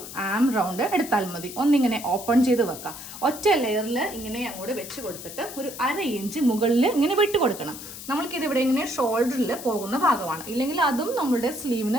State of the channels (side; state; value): left; noise; hiss, 12 dB below the sound